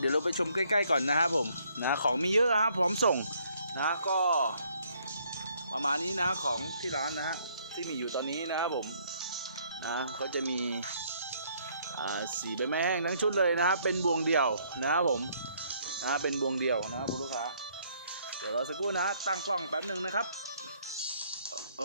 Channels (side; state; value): both; inverted; correlation -0.66